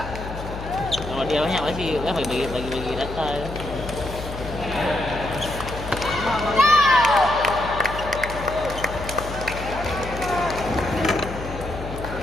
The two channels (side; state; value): left; noise; hum, 9 dB below the sound